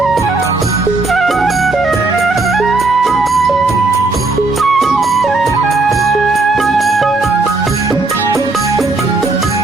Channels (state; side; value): quieter; left; 3.4 dB